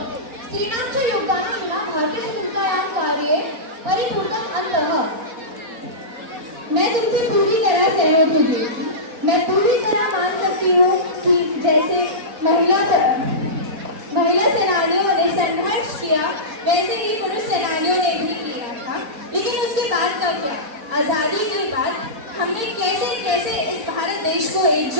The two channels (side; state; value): left; late; 4.1 ms